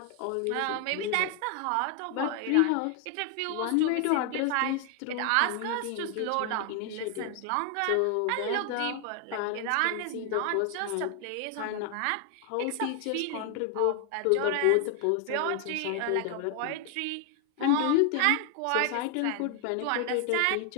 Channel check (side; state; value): both; different; correlation 0.00